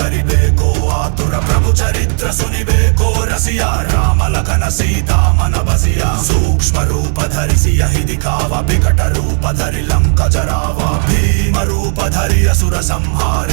ఆతుర ప్రభు చరిత్ర సునిబేకో రసియా రామ లఖన సీతా మన బసియా సూక్ష్మ రూప ధరిసి యహి దిఖావ వికట రూప ధరి లంక జరావ భీమ రూప ధరి असुर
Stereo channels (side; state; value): left; silent; 56 dB below the other